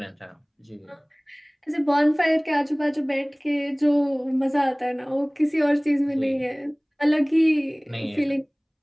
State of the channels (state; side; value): identical; both; correlation 1.00